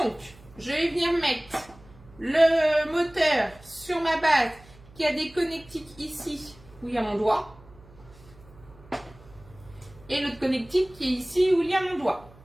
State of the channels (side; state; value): right; noise; hum, 24 dB below the sound